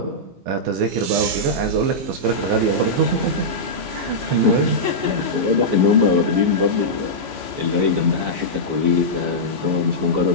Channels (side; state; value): left; late; 15 ms